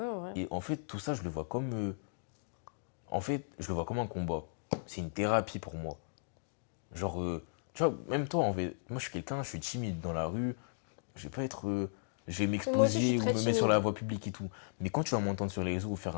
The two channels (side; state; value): right; silent; digital silence